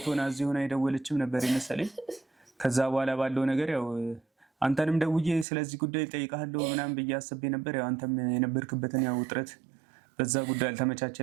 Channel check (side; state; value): left; drops out; at 5.5 s